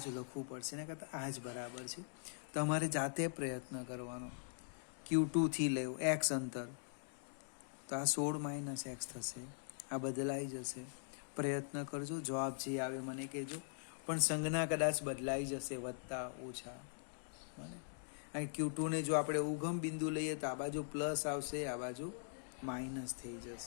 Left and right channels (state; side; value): silent; right; digital silence